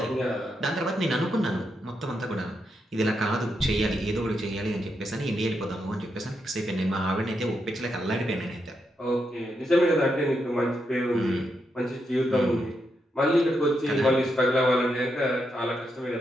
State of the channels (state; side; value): normal; both; correlation 0.82